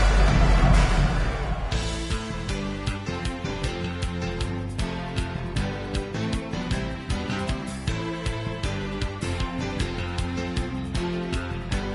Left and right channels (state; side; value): identical; both; correlation 1.00